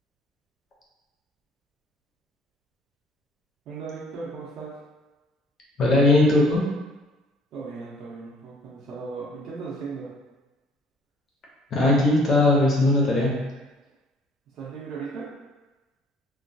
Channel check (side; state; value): both; normal; correlation 0.57